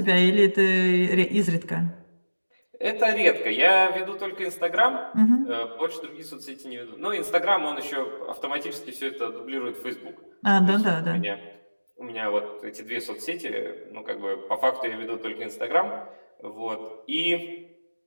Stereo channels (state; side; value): inverted; both; correlation -1.00